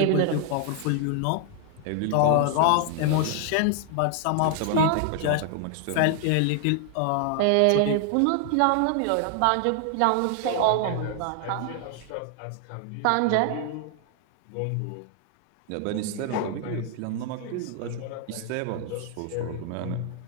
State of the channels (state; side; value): different; both; correlation 0.00